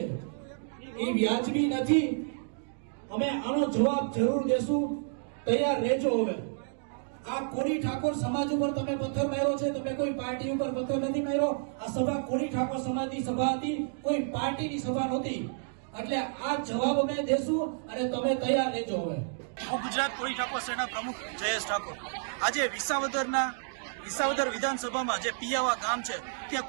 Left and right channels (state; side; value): silent; left; digital silence